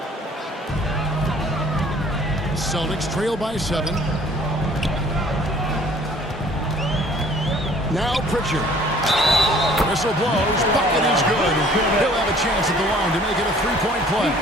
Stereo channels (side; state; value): both; normal; correlation 0.54